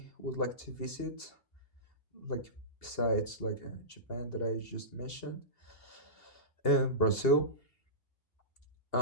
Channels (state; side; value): late; right; 2.8 ms